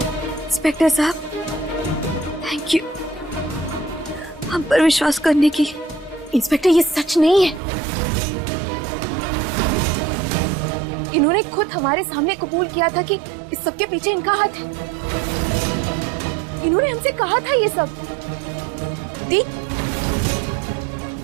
इंस्पेक्टर साहब, थैंक यू हम पर विश्वास करने की। इंस्पेक्टर, ये सच नहीं है। इन्होंने खुद हमारे सामने कबूल किया था कि इस सब के पीछे इनका हाथ है। इन्होंने हमसे कहा था ये सब।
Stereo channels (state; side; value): drops out; left; at 7.6 s